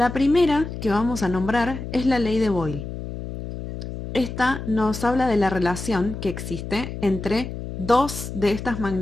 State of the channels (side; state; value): left; noise; hum, 8 dB below the sound